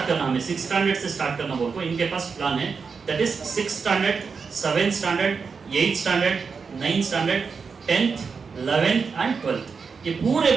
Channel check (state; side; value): quieter; left; 5.4 dB